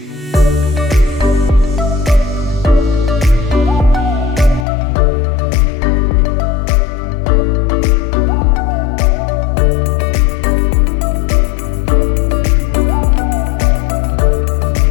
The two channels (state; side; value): drops out; right; at 4.7 s